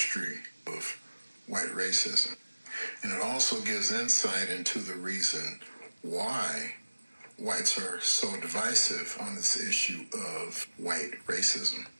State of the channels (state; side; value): inverted; both; correlation -1.00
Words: of white racism. And it also gives insight into the reason why whites are so divisive on this issue of white racism.